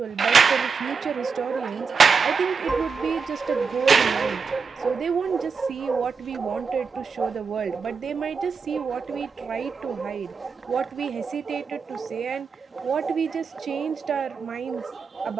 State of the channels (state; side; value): quieter; left; 5.4 dB